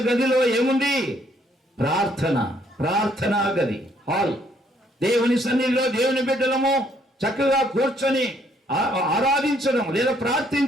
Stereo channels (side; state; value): both; normal; correlation 0.68